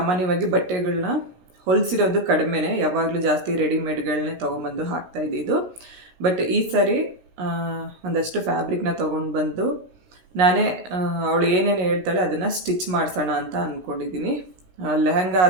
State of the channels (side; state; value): left; late; 16 ms